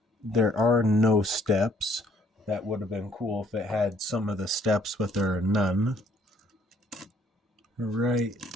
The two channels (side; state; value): both; normal; correlation 0.64